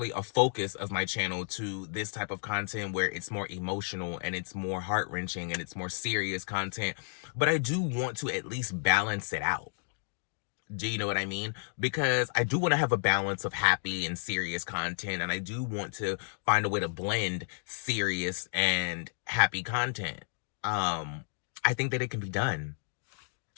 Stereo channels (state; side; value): silent; right; digital silence